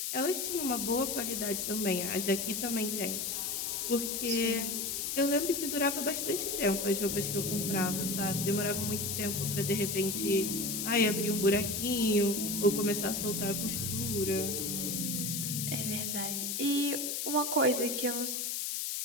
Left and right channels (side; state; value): left; noise; hiss, 1 dB below the sound